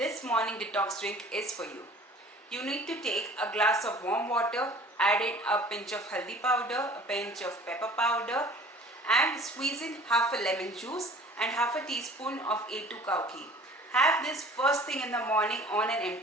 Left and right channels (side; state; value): both; normal; correlation 0.48